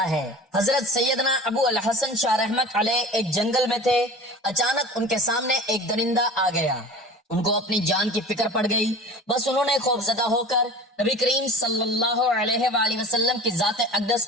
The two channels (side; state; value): both; normal; correlation 0.38